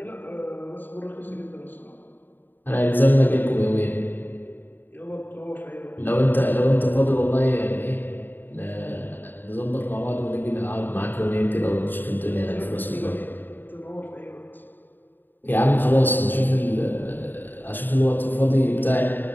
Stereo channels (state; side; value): late; right; 0.092 ms